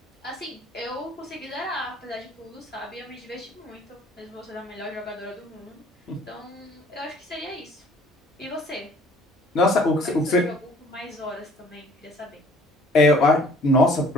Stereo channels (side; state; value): both; normal; correlation 0.55